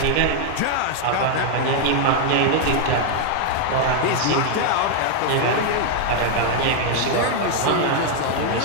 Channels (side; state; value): both; different; correlation 0.00